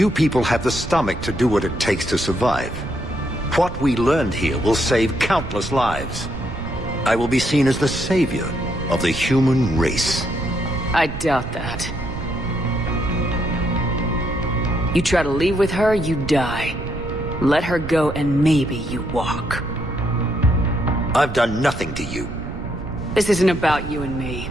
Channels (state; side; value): noise; right; rumble, 9 dB below the sound